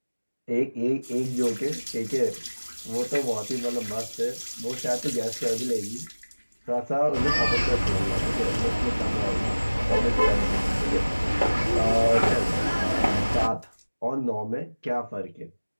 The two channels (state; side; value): inverted; both; correlation -1.00